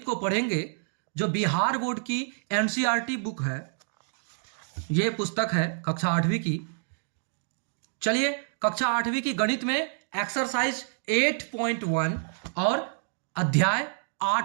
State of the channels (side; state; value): left; silent; digital silence